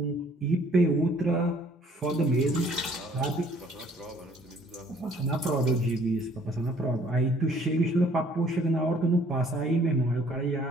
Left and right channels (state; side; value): normal; both; correlation 0.59